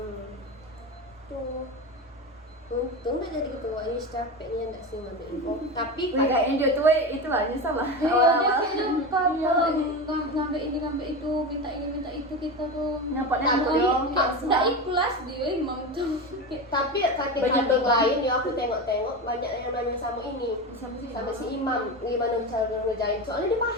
tuh untung udah jadi ketua ini capeknya enggak sih ngambil info tapi Wih, kayaknya dia tuh itu lah nyesal lah. Iya, dia Awal-awal. kayaknya kalau ngambil ini ngambil itu, minta ini minta itu kita tuh. Nyapot-nyapot Tapi- dong. Nggak ikhlas dia imam tuh. tapi cutting Banyak cutting banget. lain ya aku tengok-tengok banyak yang nanya sama ini sama si Imam gimana cara ngerjain soalnya dia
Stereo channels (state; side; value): normal; both; correlation 0.22